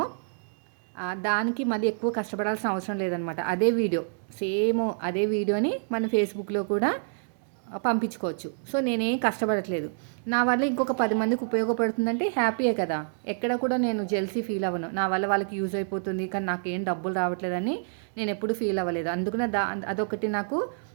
దానికి మళ్ళీ ఎక్కువ కష్టపడాల్సిన అవసరం లేదనమాట. అదే వీడియోని మన ఫేస్బుక్లో కూడా పంపించుకోవచ్చు. సో, నేనేం కష్టపడట్లేదు. నా వల్ల ఇంకొక 10 మందికి ఉపయోగపడుతుందంటే హ్యాపీయే కదా! ఎక్కడ కూడా నేను జెల్సీ ఫీల్ అవ్వను. నా వల్ల వాళ్ళకి యూజ్ అయిపోతుంది, కానీ నాకేం డబ్బులు రావట్లేదని నేను ఎప్పుడు ఫీల్ అవ్వలేదు. అందుకనే అదొకటి నాకు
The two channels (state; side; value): silent; left; digital silence